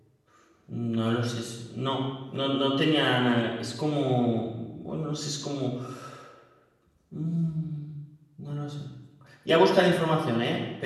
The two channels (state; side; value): identical; both; correlation 1.00